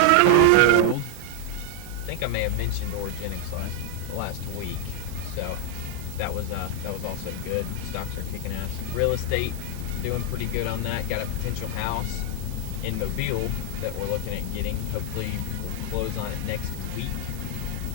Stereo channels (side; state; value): both; different; correlation 0.00